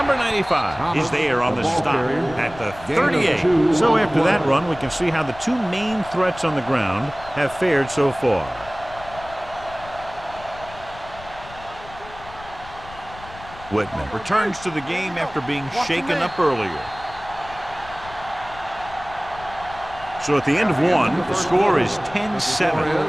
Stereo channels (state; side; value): noise; left; rumble, 18 dB below the sound